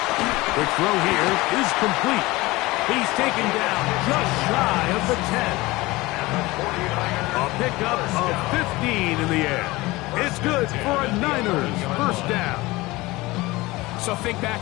The throw here is complete. He's taken down just shy of the 10. A pickup of 15 in the air. It's good for a Niners 1st down. So think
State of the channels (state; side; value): quieter; right; 20.8 dB